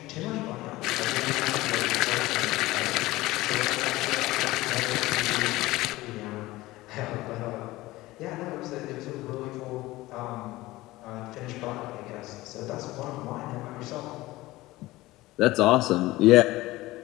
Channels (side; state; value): right; quieter; 18.6 dB